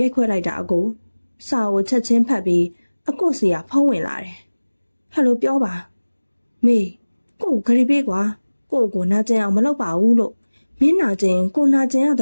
ိုက်ခွဲလိုက်တာအကိုစာကိုချက်ချင်းဖတ်ပြီးအကိုစီကဖုံးဝင်လာတယ်ဟယ်လိုပြောပါမေကိုဂရီပေးကွာ ကိုနာကျင်အောင်မလုပ်ပါဘူးလို့မင်းနာကျင်ကိုနာကျင်ရတ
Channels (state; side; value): inverted; both; correlation -1.00